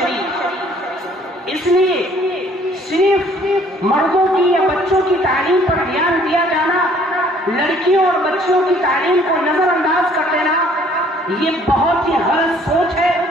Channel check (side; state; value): both; normal; correlation 0.59